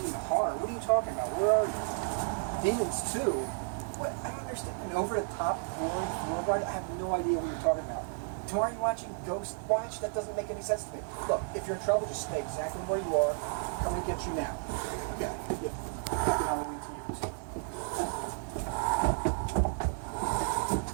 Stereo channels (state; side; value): silent; left; 56 dB below the other